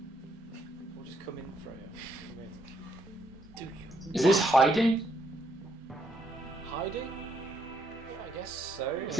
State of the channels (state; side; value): normal; both; correlation 0.74